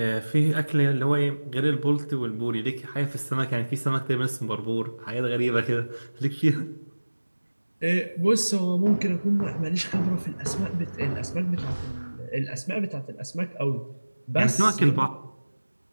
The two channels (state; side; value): inverted; both; correlation -1.00